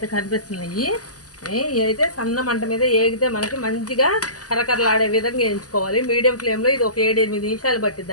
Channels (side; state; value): right; late; 0.67 ms